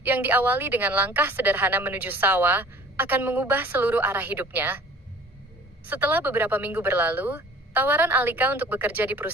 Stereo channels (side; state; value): both; normal; correlation 0.48